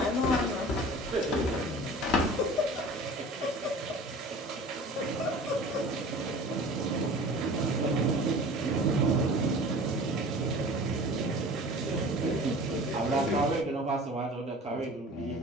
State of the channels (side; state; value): both; normal; correlation 0.41